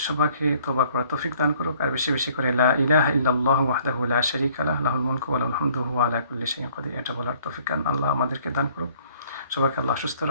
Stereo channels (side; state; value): both; inverted; correlation -0.59